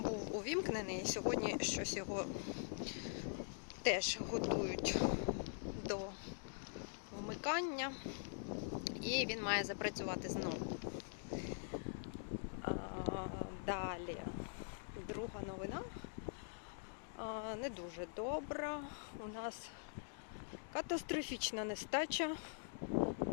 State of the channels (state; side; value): silent; right; digital silence